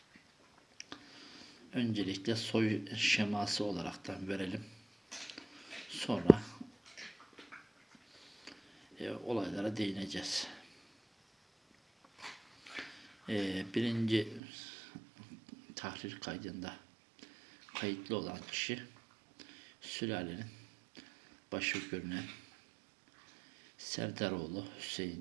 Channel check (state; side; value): drops out; left; at 14.4 s